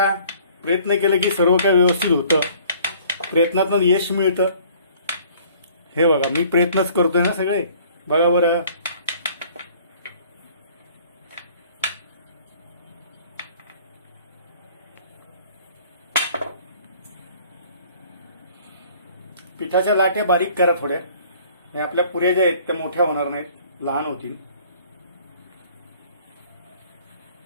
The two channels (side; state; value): both; inverted; correlation -0.54